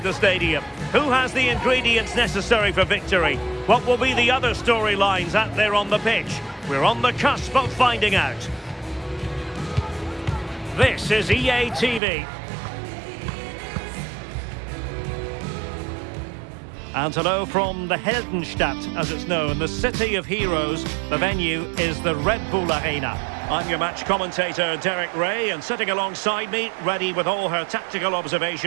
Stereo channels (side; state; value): left; drops out; at 12.0 s